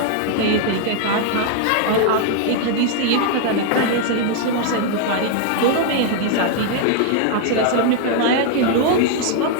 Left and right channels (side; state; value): both; different; correlation 0.00